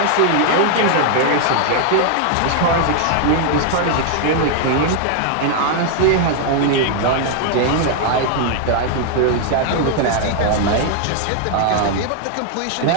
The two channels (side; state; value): both; different; correlation 0.00